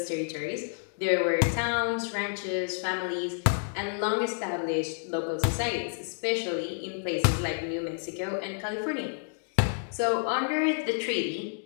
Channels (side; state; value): right; silent; digital silence